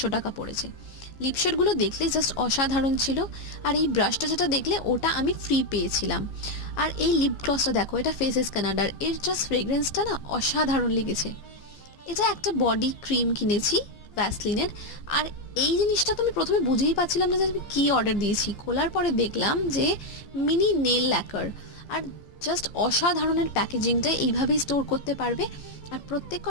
টাকা পড়েছে। লিপশেডগুলো দেখলে জাস্ট অসাধারণ ছিল। আর এই ব্রাশটা যেটা দেখলে ওটা আমি ফ্রি পেয়েছিলাম। আর এই লিপ গ্লসটা দেখো, এটা ফেসেস কানাডার, এর জাস্ট ফ্রেগ্রেন্সটা না অসাধারণ লেগেছে। এটা একটা বডি ক্রিম কিনেছি ভ্যাসলিনের। আর এই জিনিসটা তো আমি প্রথমে বুঝেই পাচ্ছিলাম না যে আমি কী অর্ডার দিয়েছি। খোলার পরে দেখলাম যে মিনি নেল ল্যাকার। আর জাস্ট অসাধারণের প্যাকেজিংটা, এইভাবেই স্টোর করতে পারবে। আর প্রত্যেক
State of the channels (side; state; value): right; late; 15 ms